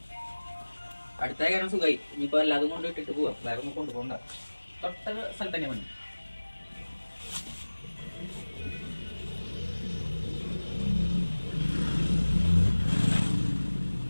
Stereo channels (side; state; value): both; inverted; correlation -1.00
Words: അടുത്ത കാരണം സുഖമായി. ഇനിയിപ്പോൾ എല്ലാതും കൊണ്ട് ഇട്ടിട്ട് പോവാം. വേറെ ഒന്നും കൊണ്ടുപോകണ്ട. തൊട്ട സ്ഥലത്ത് തന്നെ പണി.